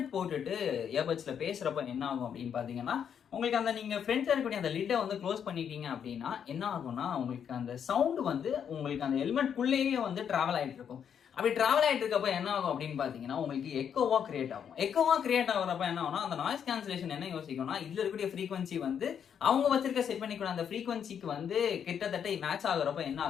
போட்டுட்டு இயர்பட்ஸ்ல பேசுறப்ப என்ன ஆகும் அப்படின்னு பாத்தீங்கன்னா, உங்களுக்கு அந்த நீங்க ஃப்ரண்ட்ல இருக்கக்கூடிய அந்த லிட்டை வந்து க்ளோஸ் பண்ணிட்டீங்க அப்படின்னா என்ன ஆகும்னா, உங்களுக்கு அந்த சவுண்ட் வந்து உங்களுக்கு அந்த ஹெல்மெட்குள்ளேயே வந்து டிராவல் ஆயிட்டு இருக்கும். அப்படி டிராவல் ஆயிட்டு இருக்கப்ப என்ன ஆகும் அப்படின்னு பாத்தீங்கன்னா, உங்களுக்கு எக்கோவா கிரியேட் ஆகும். எக்கோவா கிரியேட் ஆகுறப்ப என்ன ஆகும்னா, அந்த நாய்ஸ் கேன்சலேஷன் என்ன யோசிக்கும்னா, இதுல இருக்கக்கூடிய ஃப்ரீக்வன்சி வந்து அவங்க வச்சிருக்க செட் பண்ணிக்கூட அந்த ஃப்ரீக்வன்சிக்கு வந்து கிட்டத்தட்ட மேட்ச் ஆகுறப்ப என்ன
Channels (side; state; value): right; quieter; 8.1 dB